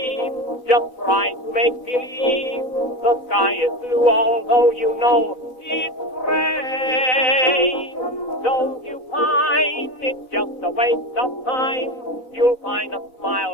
just try to make believe the sky is blue, although you know it's gray. Don't you find it's just a waste of time? You'll find a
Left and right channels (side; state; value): right; late; 4.0 ms